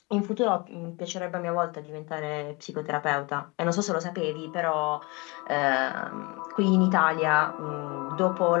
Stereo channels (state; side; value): quieter; right; 27.1 dB